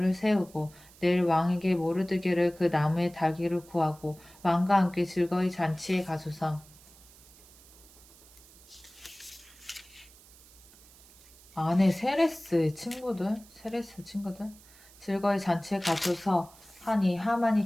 세우고 내일 왕에게 모르드게를 그 나무에 달기를 구하고 왕과 함께 즐거이 잔치에 가소서. 아내 세레스 친구들 즐거이 잔치에 가소서 하니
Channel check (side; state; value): right; noise; hiss, 24 dB below the sound